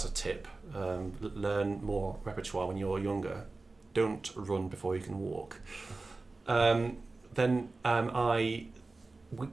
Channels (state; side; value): quieter; left; 3.5 dB